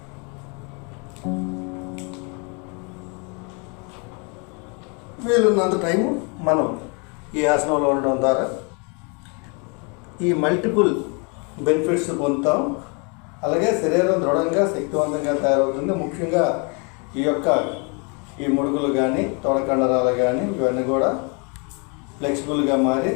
వీలున్నంత టైము మనం ఈ ఆసనంలో ఉండడం ద్వారా ఈ మల్టిపుల్ బెనిఫిట్స్ పొందుతాం. అలాగే శరీరం దృఢంగా శక్తివంతంగా తయారవుతుంది. ముఖ్యంగా ఈ ముడుగులు కానీ తొడకండరాలు కానీ ఇవన్నీ కూడా ఫ్లెక్సిబుల్గా మారి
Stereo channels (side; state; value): right; quieter; 34.1 dB